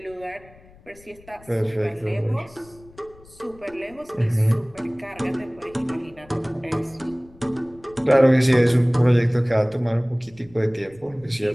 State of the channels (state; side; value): noise; left; rumble, 25 dB below the sound